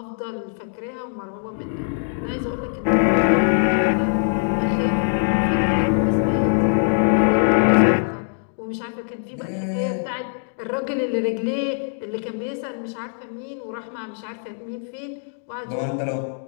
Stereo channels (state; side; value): silent; right; 64 dB below the other